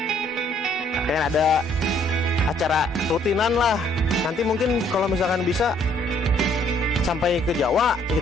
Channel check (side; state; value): both; normal; correlation 0.64